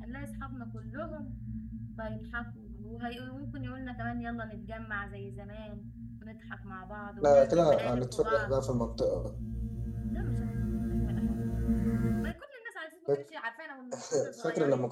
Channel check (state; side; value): identical; both; correlation 1.00